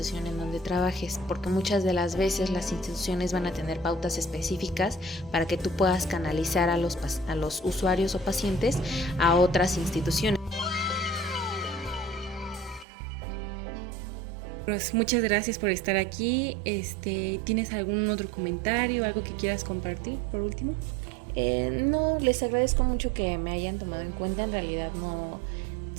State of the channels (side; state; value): left; drops out; at 12.9 s